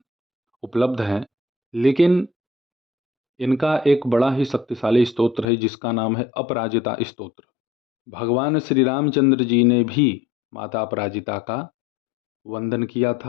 उपलब्ध हैं, लेकिन इनका एक बड़ा ही शक्तिशाली स्तोत्र है जिसका नाम है अपराजिता स्तोत्र। भगवान श्री रामचंद्र जी ने भी माता अपराजिता का वंदन किया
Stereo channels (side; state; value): right; drops out; at 5.5 s